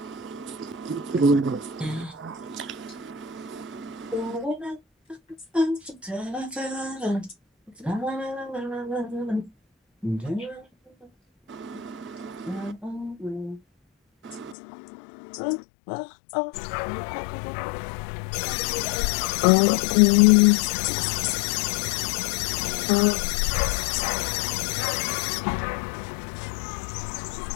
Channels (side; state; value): right; drops out; at 14.6 s